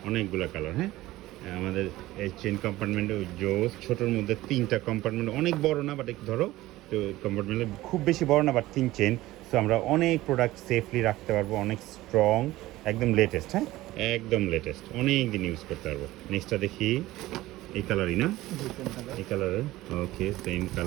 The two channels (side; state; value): left; quieter; 17.1 dB